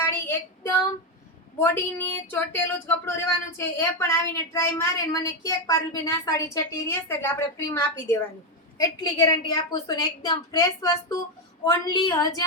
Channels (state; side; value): normal; both; correlation 0.07